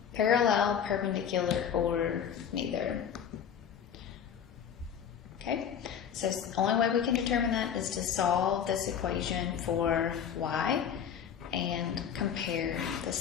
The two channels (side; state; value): right; quieter; 8.2 dB